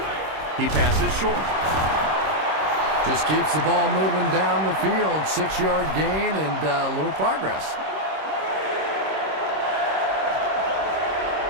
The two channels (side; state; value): left; late; 26 ms